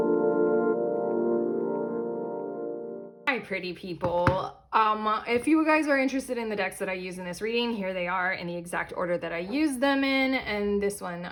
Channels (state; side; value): identical; both; correlation 1.00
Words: Hi, pretty people. If you guys are interested in the decks that I use in this reading, here they are in the exact order that I use them in. And this one,